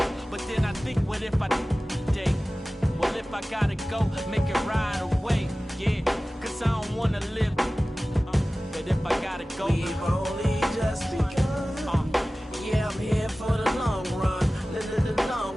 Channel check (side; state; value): both; normal; correlation 0.97